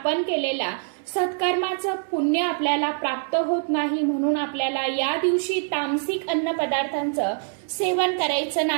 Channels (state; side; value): silent; left; 62 dB below the other